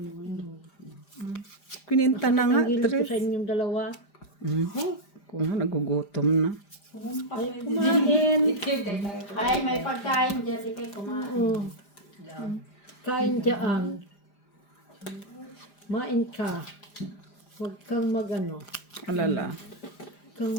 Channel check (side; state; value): right; late; 5.0 ms